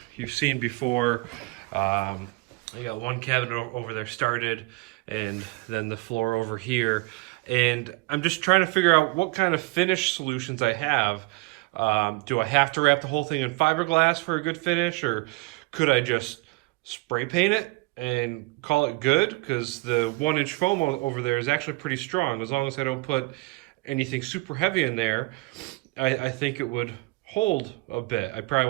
you've seen before. I got one cabinet over there started, and then the floor over here. And I'm just trying to figure out what kind of finish solutions I have. Do I have to wrap the whole thing in fiberglass for a good finish, or could I just spray paint it and call it good? Because the 1 inch foam over there is actually pretty strong. As long as I don't put anything super heavy in there, I think it would hold a bit. I probably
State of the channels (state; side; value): quieter; left; 24.1 dB